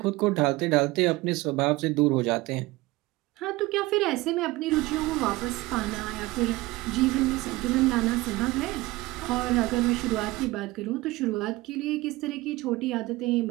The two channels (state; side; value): quieter; left; 20.2 dB